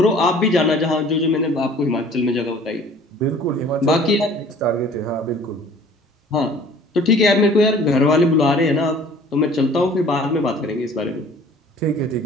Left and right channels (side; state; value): both; normal; correlation 0.50